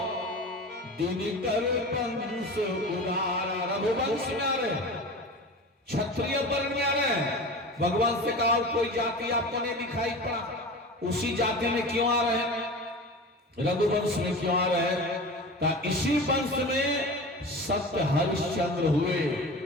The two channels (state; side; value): normal; both; correlation 0.32